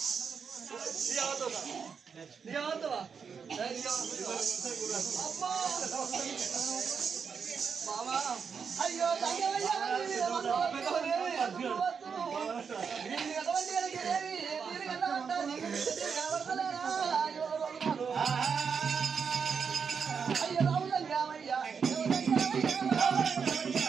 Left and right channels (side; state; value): left; quieter; 6.2 dB